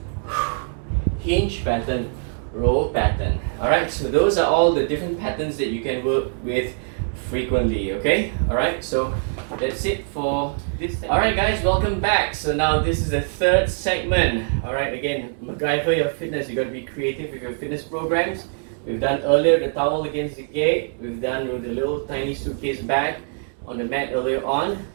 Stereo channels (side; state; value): left; silent; digital silence